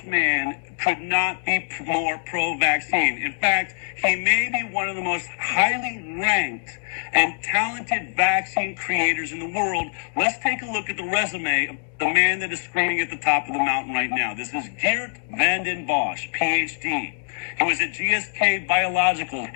man could not be more pro-vaccine. In fact, he may be one of the most highly ranked and talented vaccine creators in the world. Let's take a look at the resume of the man that is screaming at the top of the mountain right now. This is Geert Vanden Bossche, PhD. He was at GSK Biologicals,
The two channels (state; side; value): silent; right; digital silence